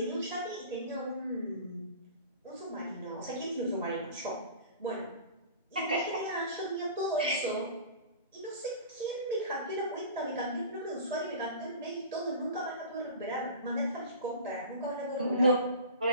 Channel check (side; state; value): both; inverted; correlation -0.38